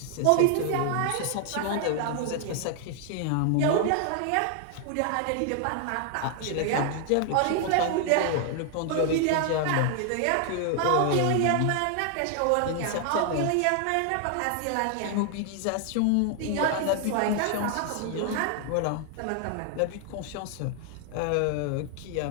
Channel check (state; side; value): different; both; correlation 0.00